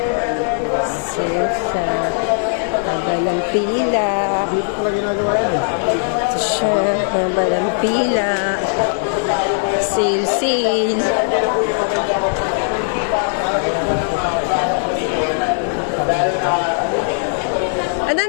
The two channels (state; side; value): silent; right; 56 dB below the other